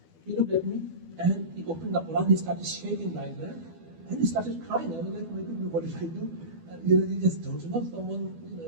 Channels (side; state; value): left; late; 12 ms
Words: He looked at me and he opened the Quran, he started shaking like that, and he started crying. I was like, my goodness, what did I do? And, you just don't know someone, what